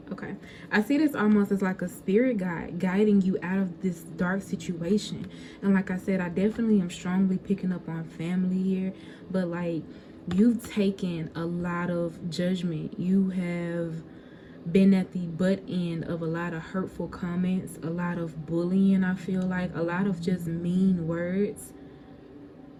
Okay. I see this almost as like a spirit guide guiding you out of this dark situation. And like I said, I definitely am strongly picking up on family here. But like, you've taken a lot of judgment. You have been at the butt end of a lot of hurtful comments, a lot of bullying, I feel like, a lot of just mean words.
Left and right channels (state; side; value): identical; both; correlation 1.00